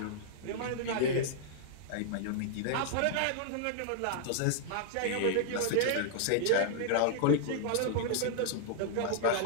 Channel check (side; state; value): both; different; correlation -0.01